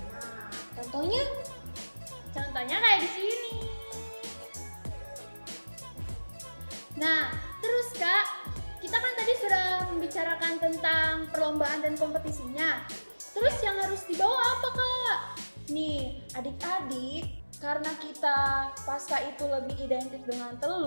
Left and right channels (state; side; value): inverted; both; correlation -1.00